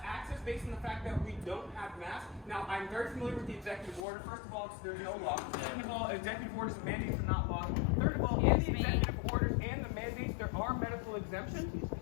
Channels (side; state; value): right; drops out; at 4.0 s